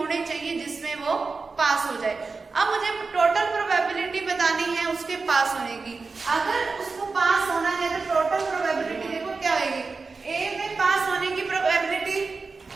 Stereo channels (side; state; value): left; quieter; 4.3 dB